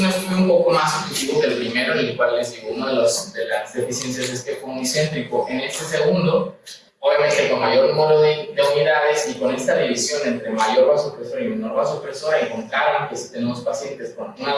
estudio un poco más objetivo que el primero, en el cual les digo, una de las deficiencias es que fue unicéntrico. En este segundo, obviamente con mayor número de unidades y con esta división entre mayor vasopresor y menor vasopresor, encontraron que si tenemos pacientes con una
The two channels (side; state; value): both; identical; correlation 1.00